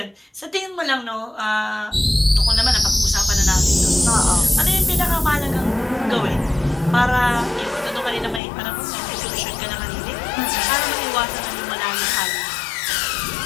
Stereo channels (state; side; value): drops out; right; at 8.4 s